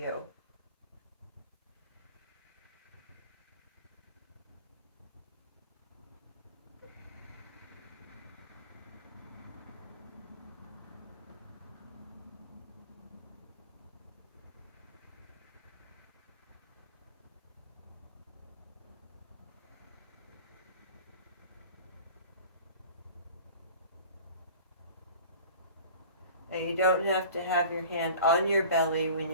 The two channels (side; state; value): both; inverted; correlation -0.42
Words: And you don't have to have your hand on your belly when